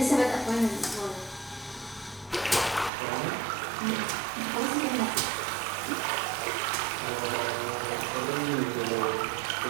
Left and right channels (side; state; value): left; drops out; at 2.9 s